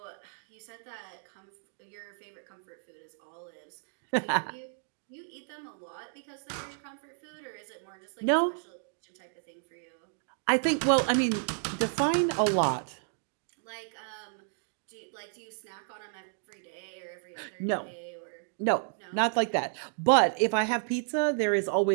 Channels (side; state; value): left; silent; digital silence